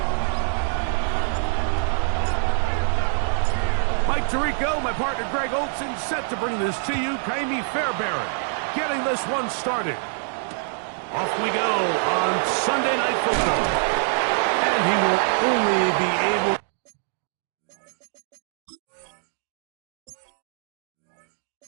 Mike Tirico, my partner Greg Olson, set to bring this to you. Kaimi Fairbairn getting this one started. Off we go on Sunday Night Football. And he will only be able...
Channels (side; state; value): left; silent; 57 dB below the other